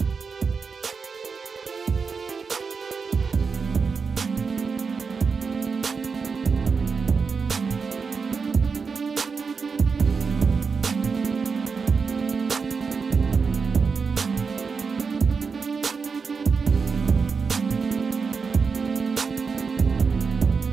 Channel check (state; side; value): quieter; left; 5.2 dB